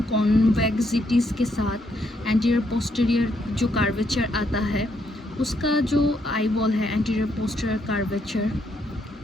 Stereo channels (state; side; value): normal; both; correlation 0.75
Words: कॉन्वेक्सिटीज़ के साथ एंटीरियर पोस्टीरियर जो कर्वेचर आता है, उसका जो आईबॉल है एंटीरियर पोस्टीरियर कर्वेचर,